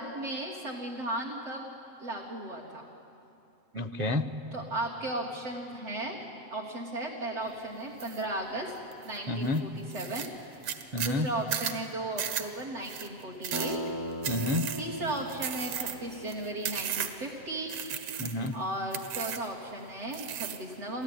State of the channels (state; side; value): late; left; 7.8 ms